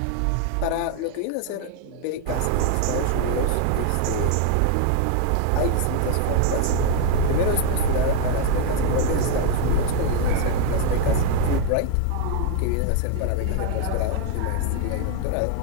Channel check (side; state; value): both; different; correlation 0.01